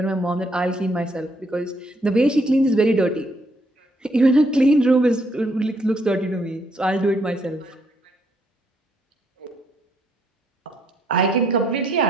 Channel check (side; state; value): both; normal; correlation 0.72